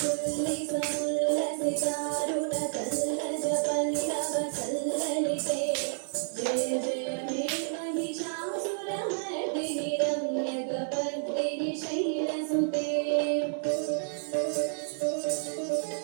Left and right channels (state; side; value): silent; left; digital silence